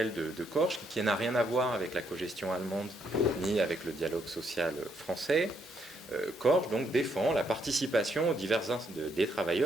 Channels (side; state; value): both; normal; correlation 0.74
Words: de Korsch, qui n'a rien à voir avec la cogestion allemande ni avec le dialogue social français, Korsch donc défend la participation des